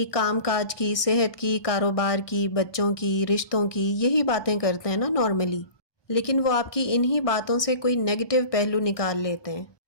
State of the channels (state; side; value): late; right; 1.2 ms